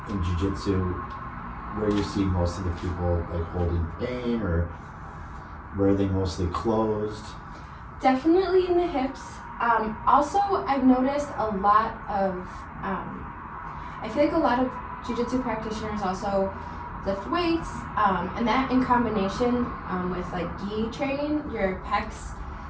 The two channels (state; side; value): identical; both; correlation 1.00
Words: in jiu-jitsu, where do you see most of the people like holding pain, or where are they mostly closed? Definitely in the hips. Also, I've noticed a lot of, I feel like a lot of jiu-jitsu practitioners also lift weights, and that in combination with like gi training, your pecs,